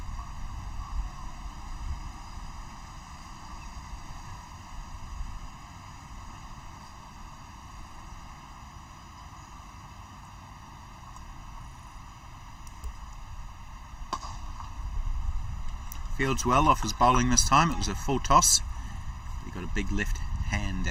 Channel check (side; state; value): both; identical; correlation 1.00